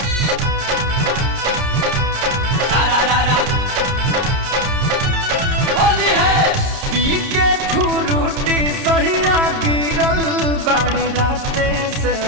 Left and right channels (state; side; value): late; left; 30 ms